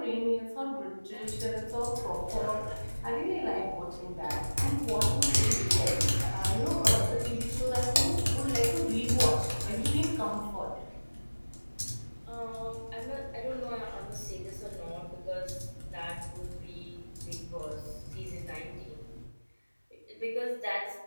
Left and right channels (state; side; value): inverted; both; correlation -1.00